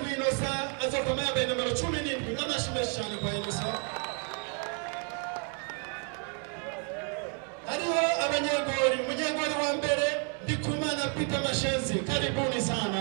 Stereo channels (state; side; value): quieter; left; 39.7 dB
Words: Inosa azokama yambaye nimero 17 n'amashime cyane kwa Inosa. Hariho abanyegori, umunyegori wa mbere Ndikumana Peter Mashenzi, karibuni sana.